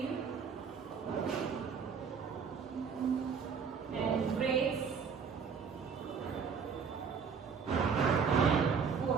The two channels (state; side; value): quieter; left; 6.1 dB